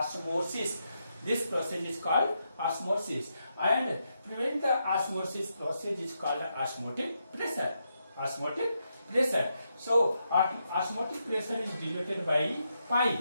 This process is called osmosis, and prevent the osmosis process is called osmotic pressure. Osmotic pressure. So osmotic pressure is denoted by pi.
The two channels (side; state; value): both; inverted; correlation -0.82